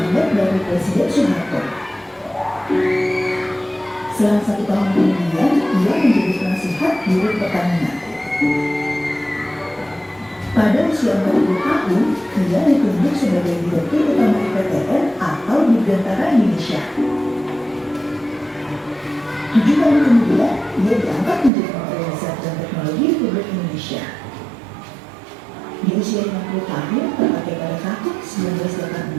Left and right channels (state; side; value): drops out; left; at 21.5 s